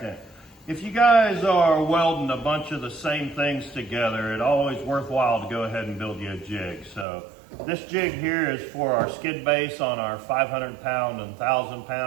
If you guys are welding a bunch of the same things together, it's always worthwhile to go ahead and build you a jig. So this jig here is for our skid base on our 500 pound and 1,000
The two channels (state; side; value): drops out; left; at 7.1 s